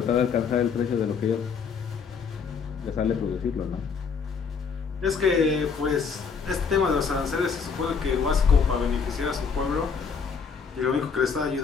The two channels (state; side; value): quieter; right; 5.8 dB